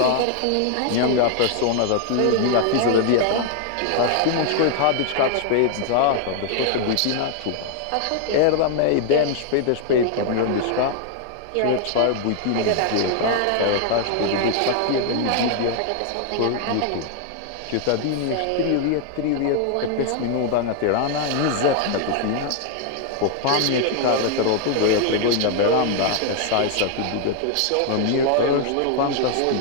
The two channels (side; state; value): both; different; correlation 0.00